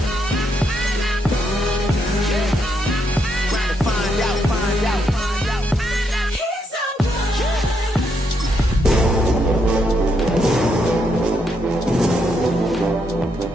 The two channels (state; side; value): normal; both; correlation 0.78